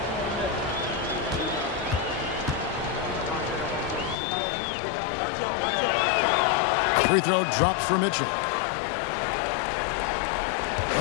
Free throw drops for Mitchell.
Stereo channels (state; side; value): drops out; right; at 4.2 s